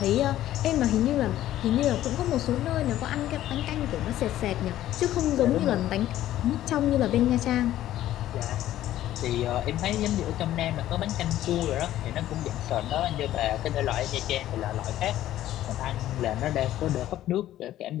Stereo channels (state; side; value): quieter; right; 13.4 dB